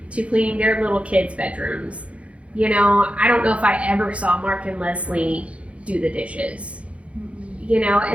to cleaning their little kids' bedrooms. You know, I don't know if I ever saw Mark and Leslie do the dishes. You know,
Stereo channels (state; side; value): late; left; 0.062 ms